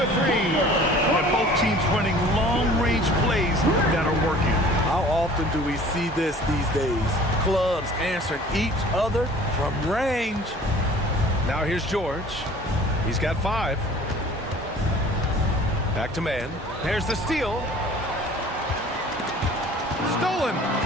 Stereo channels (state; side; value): normal; both; correlation 0.48